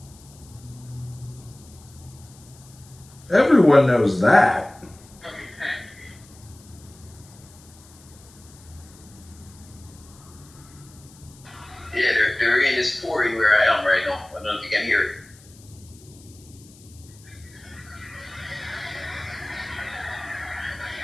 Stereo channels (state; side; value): noise; left; hiss, 24 dB below the sound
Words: Everyone knows that. Yeah, the rain is pouring where I am right now. I don't know if you can hear it.